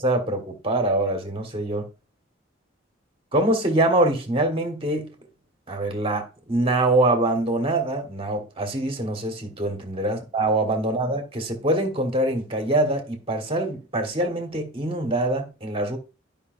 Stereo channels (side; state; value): both; normal; correlation 0.26